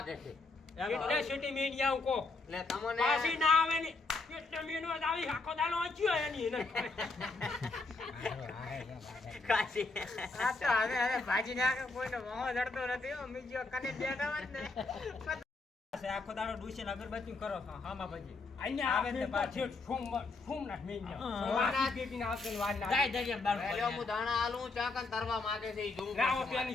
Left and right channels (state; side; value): quieter; right; 3.6 dB